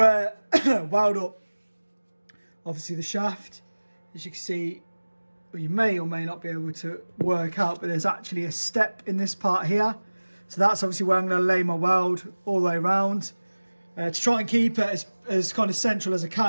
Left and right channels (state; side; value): inverted; both; correlation -1.00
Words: weld up obviously the shaft. As you can see, well, you may or may not be able to work out, but there's actually a step in this part here. So that's obviously where I'm going to lay my weld all the way around to try and keep it as kind of central as I